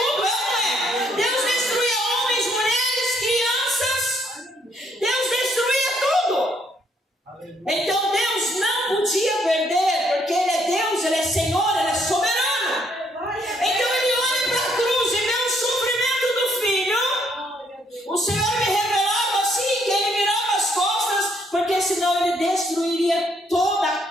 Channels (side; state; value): both; normal; correlation 0.69